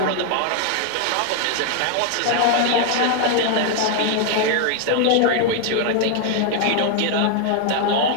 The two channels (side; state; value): both; different; correlation 0.00